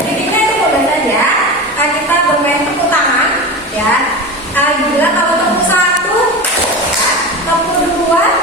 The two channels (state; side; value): normal; both; correlation 0.27